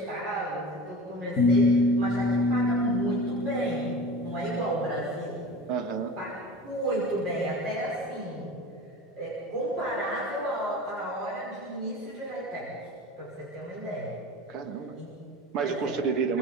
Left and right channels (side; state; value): both; normal; correlation 0.35